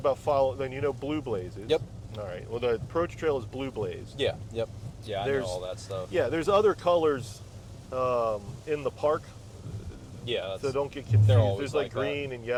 then you know blue blazes. Yep. All right. Well, the approach trail is blue blaze. Yeah. Yep. Yeah, I know There's- all that stuff. Yeah. There's other colors in the park, Yeah. That's, so don't get confused. they're always There's like like that. green and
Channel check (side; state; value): both; identical; correlation 1.00